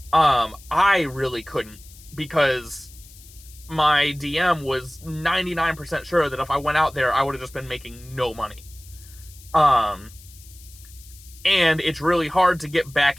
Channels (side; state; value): left; noise; hiss, 22 dB below the sound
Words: I really couldn't, because my DM was 99% sure that if I went out there, I would have just been making no money. And it's really hard to get back